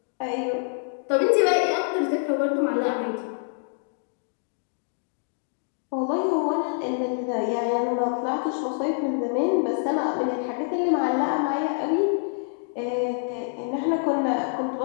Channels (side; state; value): right; silent; digital silence